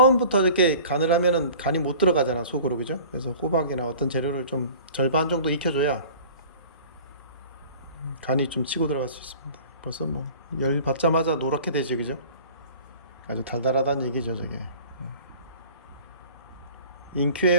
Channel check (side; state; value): both; inverted; correlation -0.44